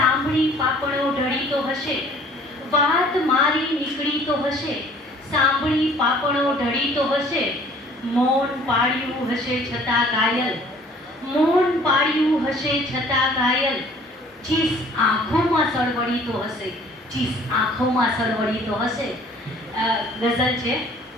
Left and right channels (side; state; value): both; normal; correlation 0.54